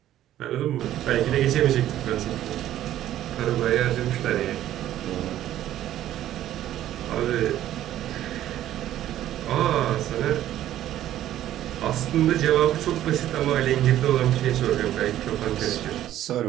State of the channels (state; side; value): quieter; left; 12.6 dB